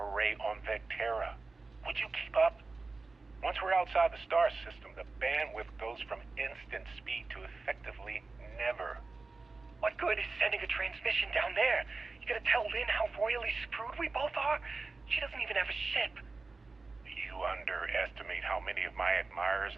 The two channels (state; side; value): quieter; left; 3.8 dB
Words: on Vectera. Would you keep up? Once we're outside the star system, the bandwidth goes from instant speed to effectively never. What good is sending a transmission down there? You gonna tell Lynn how royally screwed we both are? She doesn't even have a ship. You underestimate how many of my admirers